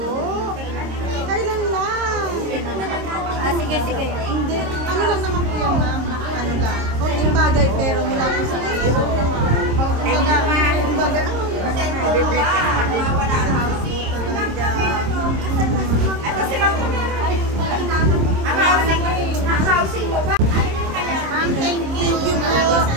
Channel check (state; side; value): late; left; 26 ms